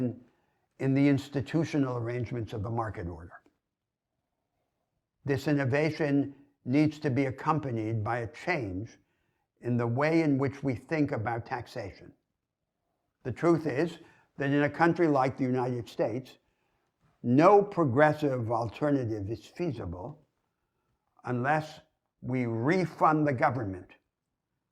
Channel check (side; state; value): both; identical; correlation 1.00